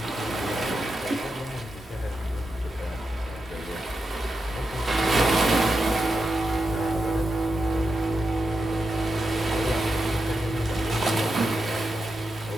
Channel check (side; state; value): both; normal; correlation 0.88